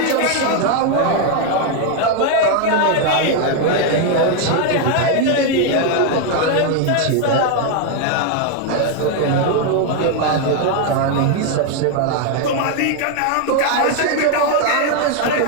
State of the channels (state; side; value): different; both; correlation 0.01